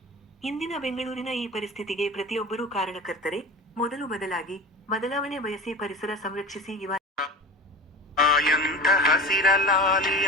ಇಂದಿನ ಬೆಂಗಳೂರಿನ ಈ ಪರಿಸ್ಥಿತಿಗೆ ಪ್ರತಿಯೊಬ್ಬರೂ ಕಾರಣಕರ್ತರೆ. ಮೊದಲು ಬದಲಾವಣೆ ಬಯಸಿ ಪರಿಸರ ಸಂರಕ್ಷಿಸಿ. ಎಂಥ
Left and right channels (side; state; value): both; normal; correlation 0.31